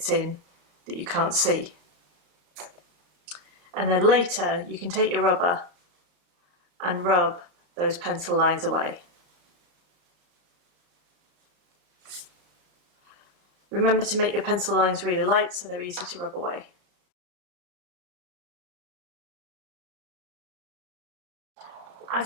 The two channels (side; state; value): left; late; 34 ms